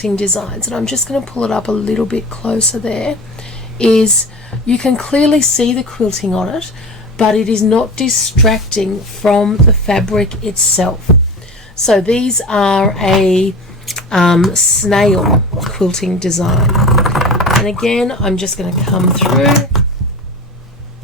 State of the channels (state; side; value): normal; both; correlation 0.32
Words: designs, and I'm just going to pull it up a little bit closer there, is you can clearly see the quilting on it, but it is not distracting from the fabric itself. So these are a snail quilting design. And again, I'm just going to come through